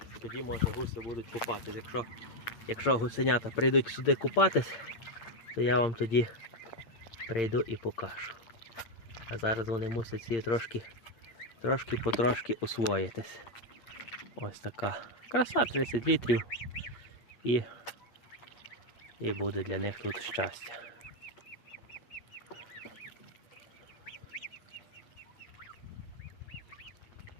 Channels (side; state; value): right; late; 8.7 ms